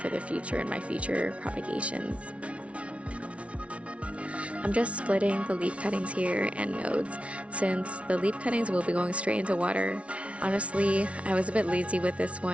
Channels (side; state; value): left; late; 0.062 ms